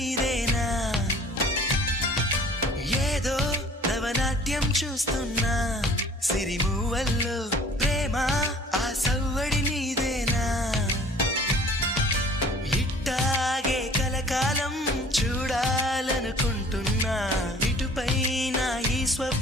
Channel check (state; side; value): normal; both; correlation 0.51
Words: ఏదో నవనాట్యం చూస్తున్నా సిరిమూవల్లో ప్రేమ ఆ సవ్వడి నీదేనా ఇట్టాగే కలకాలం చూడాలనుకుంటున్నా ఇటుపైన ఈ